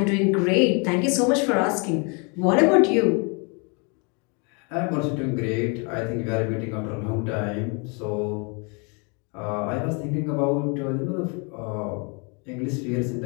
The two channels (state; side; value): quieter; right; 33.7 dB